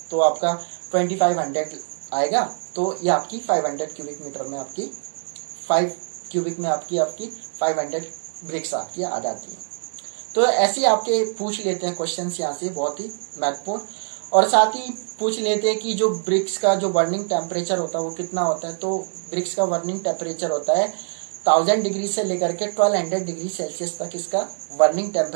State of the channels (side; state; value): left; silent; digital silence